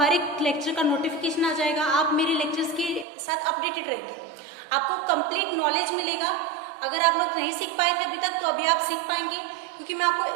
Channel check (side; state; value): left; drops out; at 3.1 s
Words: एक lecture का notification आ जाएगा, आप मेरे लेक्चर्स के साथ अपडेटेड रहेंगे, आपको कंप्लीट नॉलेज मिलेगा. अगर आप लोग नहीं सीख पाए थे अभी तक तो अभी आप सीख पाएंगे, क्योंकि मैं